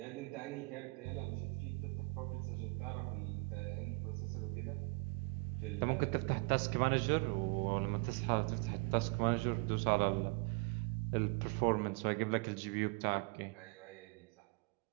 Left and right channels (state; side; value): quieter; left; 28.5 dB